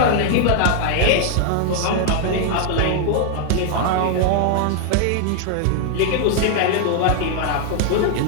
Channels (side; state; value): both; different; correlation 0.00